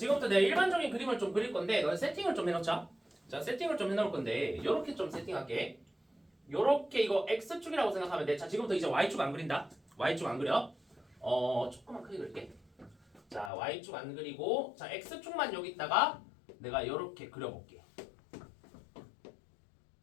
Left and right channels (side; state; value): right; drops out; at 13.5 s